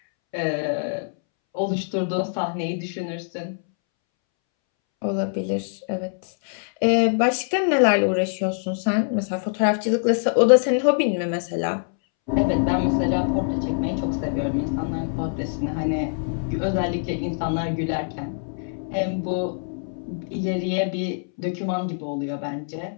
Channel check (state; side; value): silent; right; 63 dB below the other